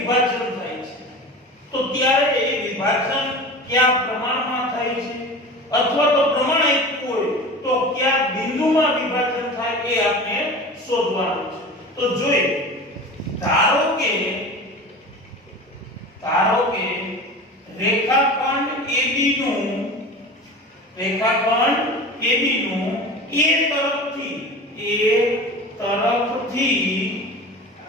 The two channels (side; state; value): both; normal; correlation 0.34